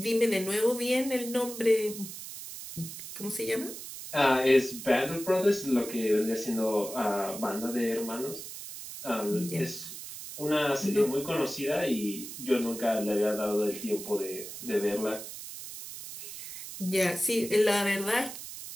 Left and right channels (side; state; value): right; noise; hiss, 10 dB below the sound